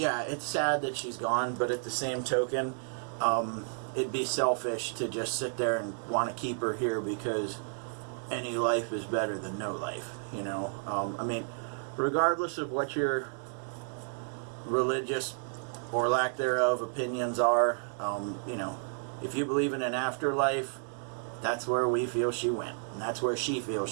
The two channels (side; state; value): left; silent; digital silence